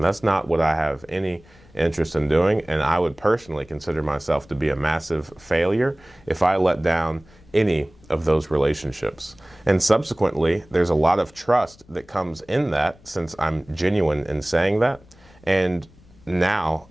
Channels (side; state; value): left; noise; rumble, 27 dB below the sound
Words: that's not what I have any interest in doing, and I would personally consider myself to be a massive failure if I let down any of those relationships. And subsequently, there's a lot of trust that comes in that, since I'm genuine in saying that. And now